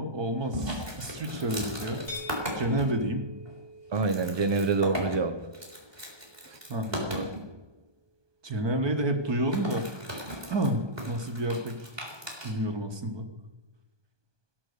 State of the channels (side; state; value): left; late; 1.2 ms